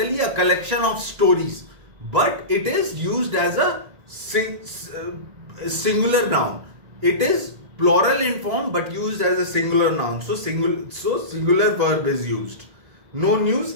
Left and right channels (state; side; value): late; left; 2.0 ms